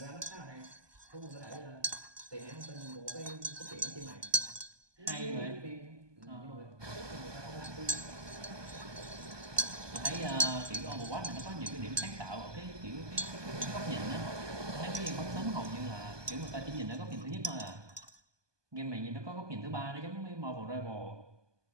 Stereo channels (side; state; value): left; late; 1.2 ms